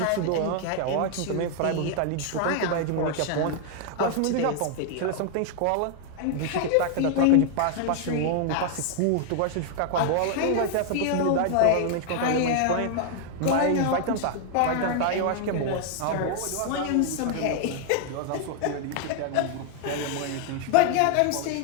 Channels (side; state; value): both; different; correlation 0.00